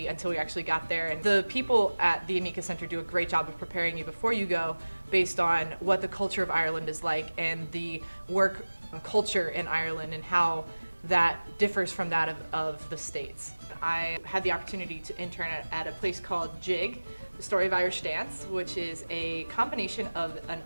until we actually got there. And the people at the Anika Center do a great job of preparing you before you go based on what the culture of Ireland is like and the work culture in Ireland and how that differs from that of the States. I had the opportunity to intern at a place called JIG, the Story of Irish Dance, which is a combination of an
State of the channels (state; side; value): inverted; both; correlation -1.00